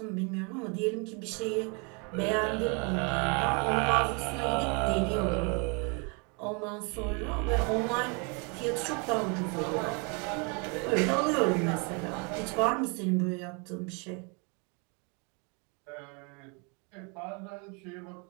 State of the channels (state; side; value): quieter; left; 33.3 dB